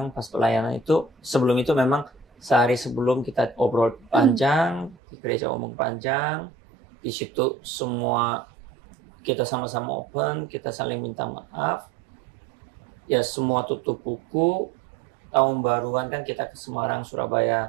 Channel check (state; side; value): drops out; left; at 5.0 s